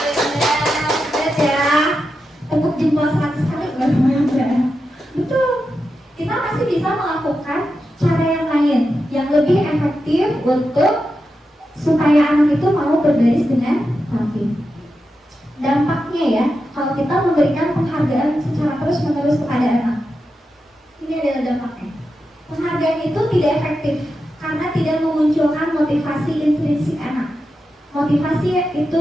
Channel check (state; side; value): normal; both; correlation 0.89